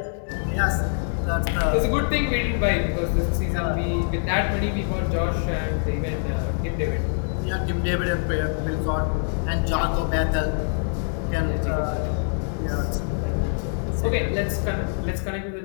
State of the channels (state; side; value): silent; right; 62 dB below the other